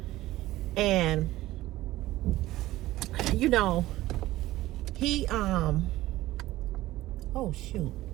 And, you know, he, oh shoot,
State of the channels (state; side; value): quieter; left; 16.4 dB